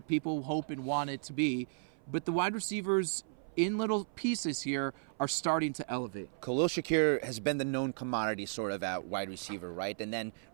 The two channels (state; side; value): silent; left; 55 dB below the other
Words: people hope and want it to be, but the wide receivers in little pieces here are starting to elevate. Khalil Shakir has been the known commodity sort of at wide receiver, right? And then